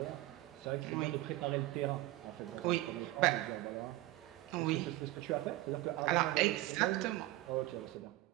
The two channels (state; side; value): quieter; left; 17.2 dB